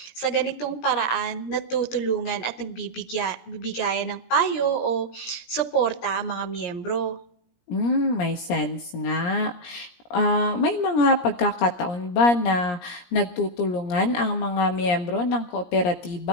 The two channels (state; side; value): late; right; 17 ms